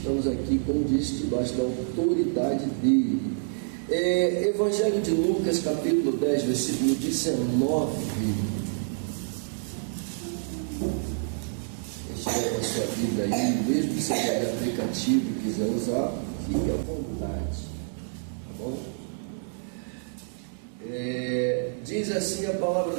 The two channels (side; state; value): left; silent; digital silence